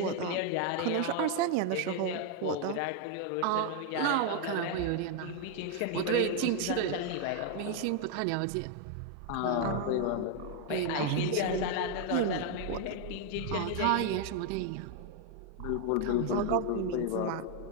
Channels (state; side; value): different; both; correlation 0.01